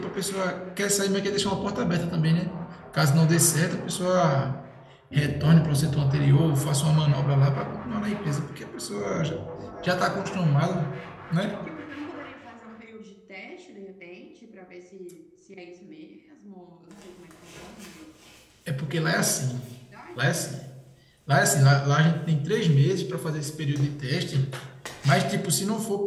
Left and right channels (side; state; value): both; identical; correlation 1.00